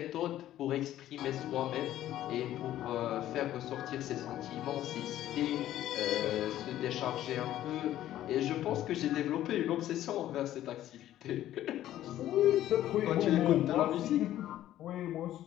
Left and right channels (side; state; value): right; quieter; 13.0 dB